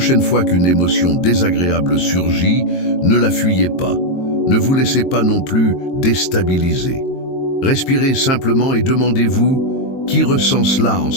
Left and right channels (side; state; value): right; late; 22 ms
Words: fois qu'une émotion désagréable surgit, ne la fuyez pas. Ne vous laissez pas non plus déstabiliser. Respirez simplement et demandez-vous qui ressent cela en